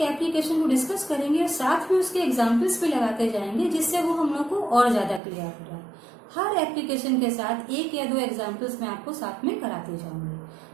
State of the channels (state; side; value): drops out; left; at 5.2 s